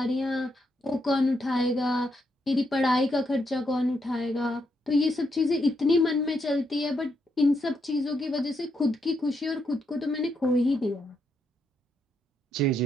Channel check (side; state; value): both; normal; correlation 0.79